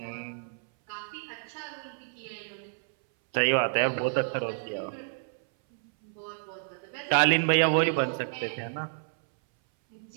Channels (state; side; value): silent; left; 58 dB below the other